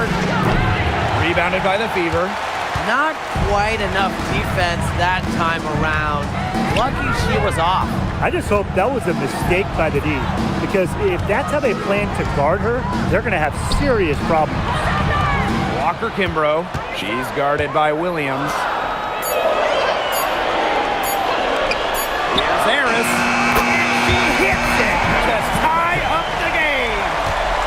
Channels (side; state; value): both; identical; correlation 1.00